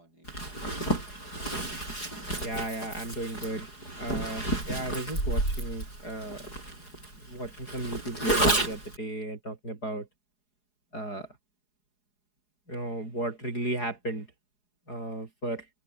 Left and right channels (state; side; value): late; right; 4.8 ms